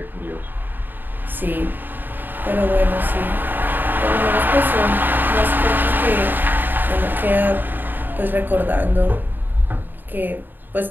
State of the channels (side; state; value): left; late; 0.092 ms